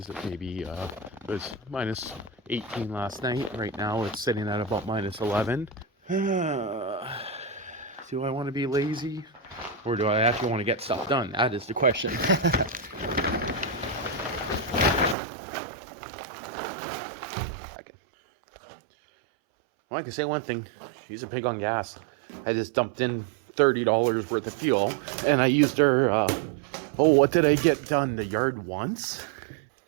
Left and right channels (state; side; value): drops out; left; at 15.2 s